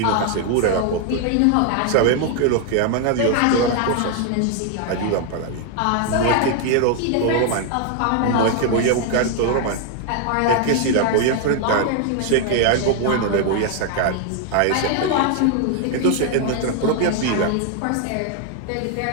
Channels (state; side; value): different; both; correlation 0.00